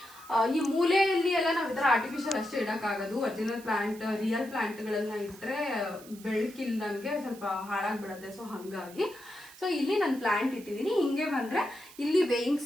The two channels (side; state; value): right; noise; hiss, 20 dB below the sound